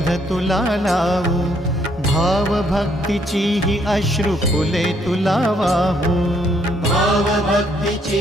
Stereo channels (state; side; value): normal; both; correlation 0.69